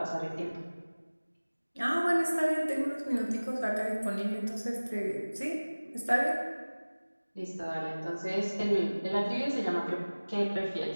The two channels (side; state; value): both; inverted; correlation -1.00